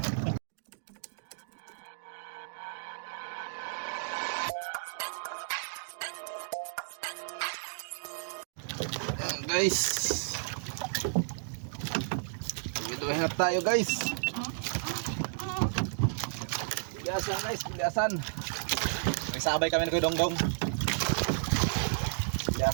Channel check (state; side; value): silent; left; digital silence